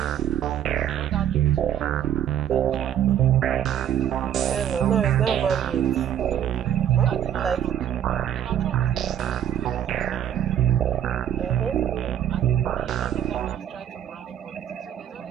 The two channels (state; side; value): quieter; left; 10.4 dB